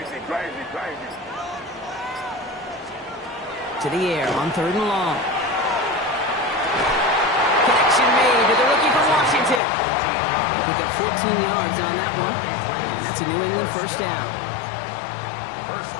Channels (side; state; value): right; drops out; at 9.6 s